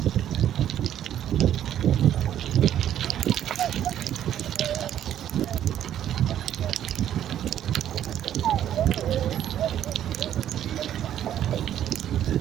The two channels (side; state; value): left; quieter; 10.9 dB